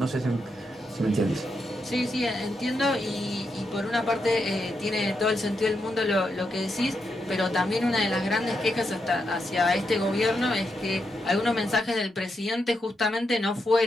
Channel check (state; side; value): normal; both; correlation 0.83